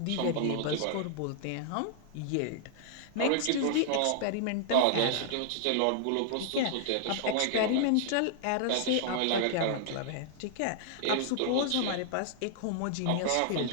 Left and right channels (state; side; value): different; both; correlation -0.01